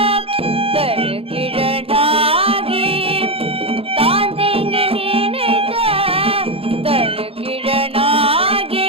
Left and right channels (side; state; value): left; late; 0.27 ms